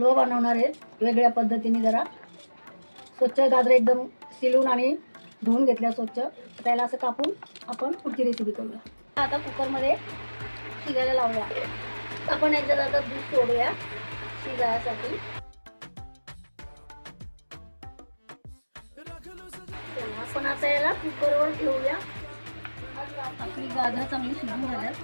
बनवणार आहे वेगळ्या पद्धतीने. जरा स्वच्छ गाजर एकदम शिलून आणि धुवून घेतल्या स्वच्छ. त्याला असं कापून आपण पुढची रेसिपी करूया. आता कुकरमध्ये शिजायला लावूया. आपण याच्यात आता दूध सोडूया शिजायसाठी. आपण आता याला कुकरवर ठेवूया. आपली गाजर चांगली शिजून झाल्यात.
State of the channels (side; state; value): both; inverted; correlation -1.00